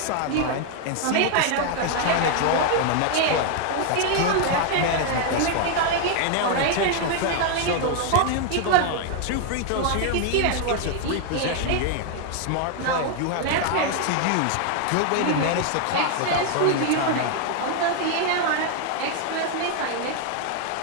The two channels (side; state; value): both; different; correlation 0.00